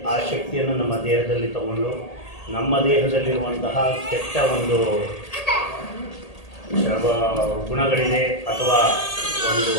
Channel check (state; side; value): late; right; 1.8 ms